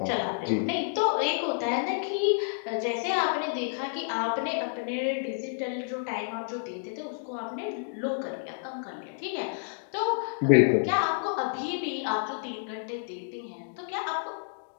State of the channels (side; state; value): right; silent; digital silence